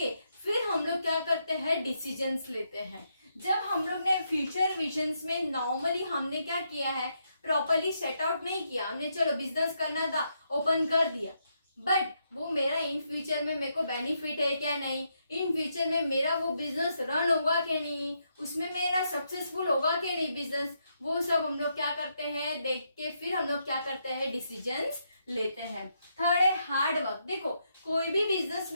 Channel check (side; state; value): both; inverted; correlation -0.79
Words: फिर हम लोग क्या करते हैं, डिसीजंस लेते हैं। जब हम लोग ने फ्यूचर विजन्स में नॉर्मली हमने क्या किया है, प्रॉपरली सेट आउट नहीं किया हमने, चलो बिजनेस करना था, ओपन कर दिया, बट वो मेरा इन फ्यूचर में मेरे को बेनिफिट है क्या नहीं, इन फ्यूचर में मेरा वो बिजनेस रन होगा क्या नहीं, उसमें मेरा सक्सेसफुल होगा क्या नहीं बिजनेस, वो सब हम लोग क्या करते हैं, देख के फिर हम लोग क्या करते हैं, डिसीजंस लेते हैं। थर्ड है हार्ड वर्क। देखो, कोई भी बिजनेस